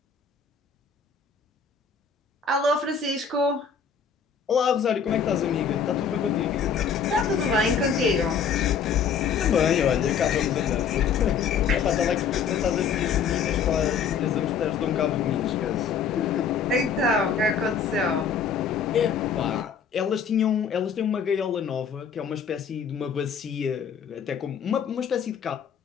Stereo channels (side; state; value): right; quieter; 6.6 dB